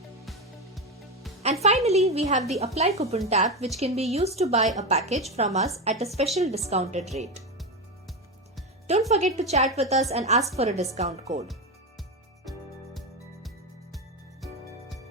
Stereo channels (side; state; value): both; normal; correlation 0.15